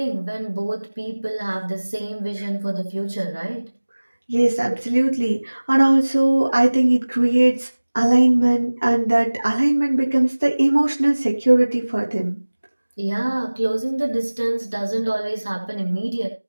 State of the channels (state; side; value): inverted; both; correlation -1.00